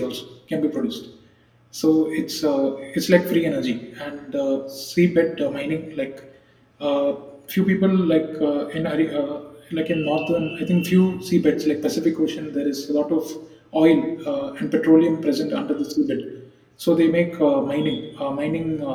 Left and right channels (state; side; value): identical; both; correlation 1.00